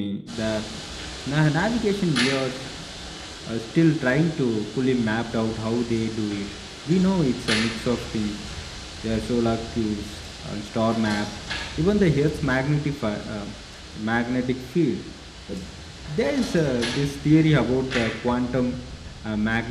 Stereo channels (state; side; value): identical; both; correlation 1.00